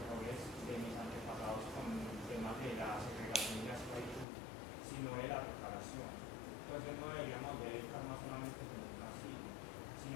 de mis antepasados con temas de la segregación y la esclavitud, sino de la preparación. Entonces no deberíamos ver el karma solamente como un castigo,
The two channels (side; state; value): right; drops out; at 4.2 s